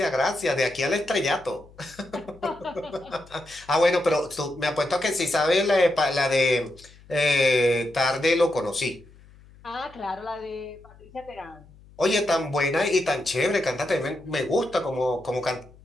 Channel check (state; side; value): noise; left; hum, 24 dB below the sound